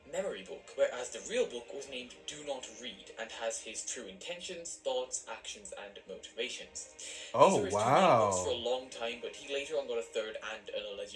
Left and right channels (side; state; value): both; identical; correlation 1.00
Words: Memory Book, whereas the real book was named Do Not Read and has his true intentions, thoughts, actions, and motivations. These were his two main books for a long time, but he later on got a third and an